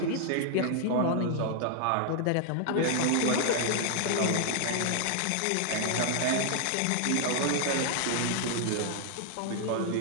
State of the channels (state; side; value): different; both; correlation 0.00